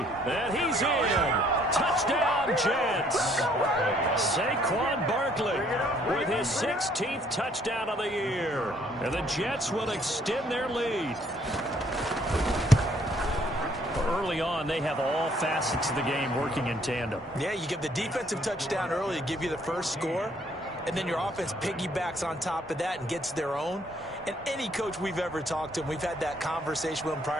And he's in. Touchdown, Jets. Saquon Barkley with his 16th touchdown of the year. And the Jets will extend their lead. Early on, they have all facets of the game working in tandem. Yeah, you give the defensive touchdown early to give you the first score, and then your offense piggybacks on top of that and gets their own. And any coach we've ever talked to, and we've had that conversation with them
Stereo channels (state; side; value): normal; both; correlation 0.64